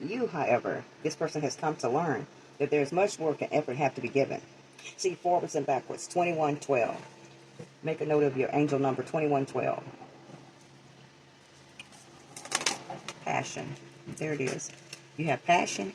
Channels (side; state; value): both; identical; correlation 1.00